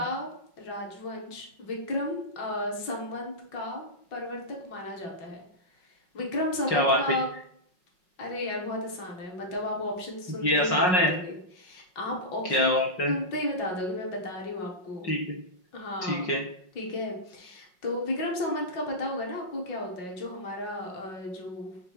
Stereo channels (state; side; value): late; right; 5.5 ms